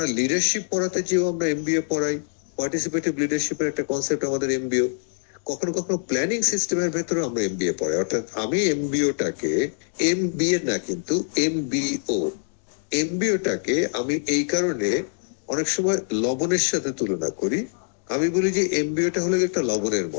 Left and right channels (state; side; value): silent; right; 62 dB below the other